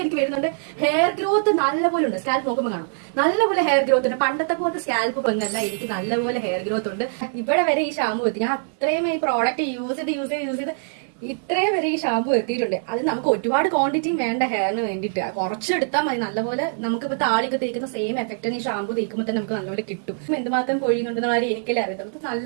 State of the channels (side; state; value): left; silent; digital silence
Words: എനിക്ക് വരുന്നുണ്ട്. ഹെയർ ഗ്രോത്ത് നല്ലപോലെ ഉണ്ട്. സ്കാൽപ്പ് നോക്കുമ്പോൾ കാണും നല്ലപോലെ ഹെയർ ഗ്രോത്ത് ഉണ്ട്. പണ്ടത്തെ പോലത്തെ സ്കാൽപ്പ് വന്നല്ല, എനിക്ക് നല്ലപോലെ ഹെയർ ഗ്രോത്ത് ഉണ്ട്. ഇവിടെ വരെ ഈ ഷാമ്പു എത്തി. ഞാൻ അത്രയും ഈ പ്രോഡക്റ്റ് യൂസ് ചെയ്ത് ഇത്രയും വരെ ഈ ഷാമ്പു എത്തിയിട്ടുണ്ട്. അത് നമുക്ക് ഒരുപാട് ക്വാണ്ടിറ്റിയും വേണ്ട ഹെയറിന് വേണ്ടിയിട്ട്. കുറച്ചെടുത്താൽ മതി. നല്ലപോലെ നമുക്കിപ്പോ താളിയൊക്കെ തേക്കുന്ന സെയിം എഫക്റ്റ് ഈ ഷാമ്പു തേക്കുമ്പോൾ തന്നെ നമുക്ക് നല്ലപോലെ കിട്ടും. എന്തുമാത്രം പൊഴിയുന്നുണ്ടെന്ന കാര്യം എനിക്കല്ലേ അറിയത്തുള്ളൂ.